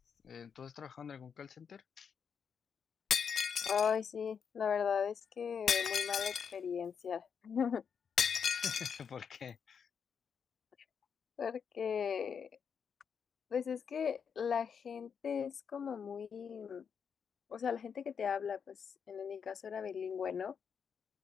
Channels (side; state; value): right; quieter; 6.8 dB